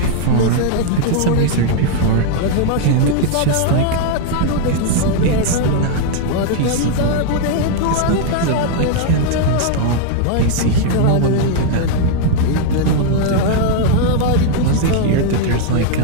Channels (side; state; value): both; different; correlation -0.01